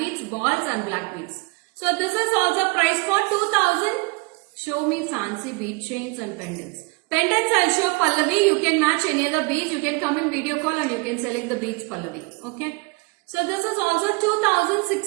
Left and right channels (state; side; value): quieter; left; 27.8 dB